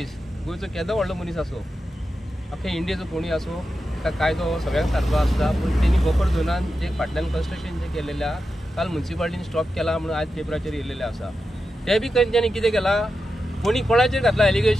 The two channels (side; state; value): both; normal; correlation 0.90